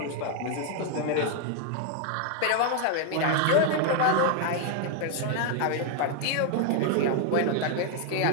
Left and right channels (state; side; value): different; both; correlation 0.01